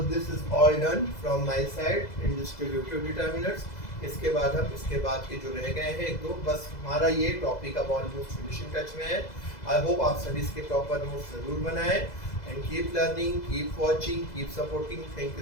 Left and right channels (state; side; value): late; right; 2.0 ms